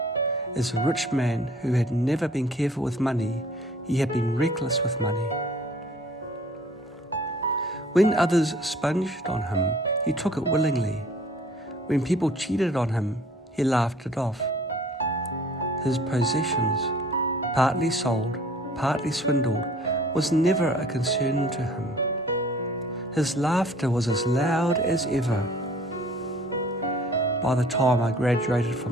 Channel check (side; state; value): both; normal; correlation 0.52